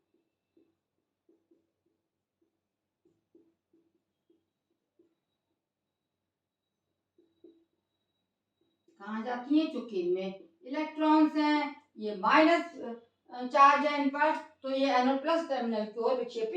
कहाँ जाती हैं, चूंकि इनमें इलेक्ट्रॉन्स हैं, ये माइनस चार्ज है इन पर, तो ये एनोड प्लस टर्मिनल की ओर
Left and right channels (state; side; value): identical; both; correlation 1.00